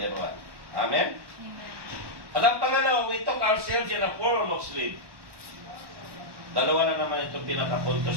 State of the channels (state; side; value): late; left; 1.1 ms